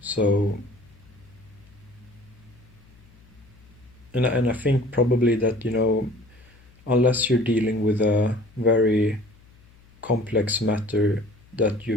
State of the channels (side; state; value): left; noise; hum, 27 dB below the sound